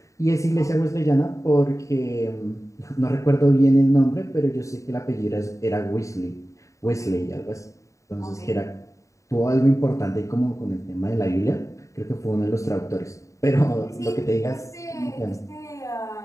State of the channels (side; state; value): right; late; 0.15 ms